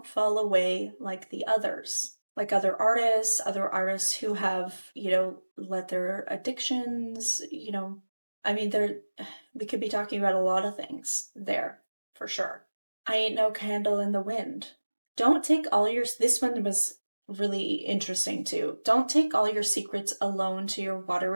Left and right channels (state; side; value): inverted; both; correlation -1.00